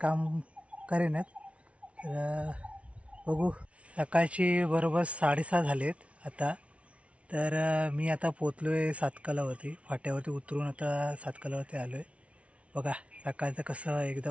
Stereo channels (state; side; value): late; left; 0.063 ms